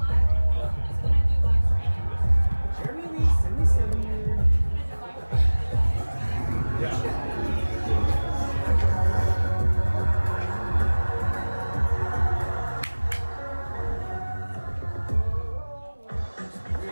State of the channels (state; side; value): inverted; both; correlation -1.00